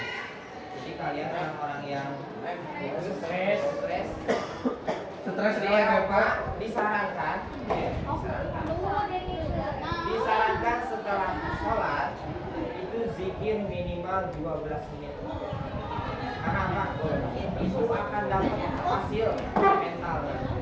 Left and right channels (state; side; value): identical; both; correlation 1.00